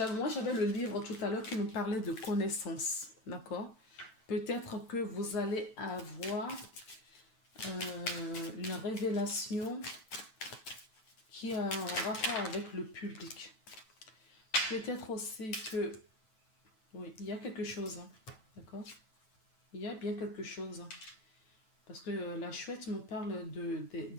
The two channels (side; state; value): right; late; 9.0 ms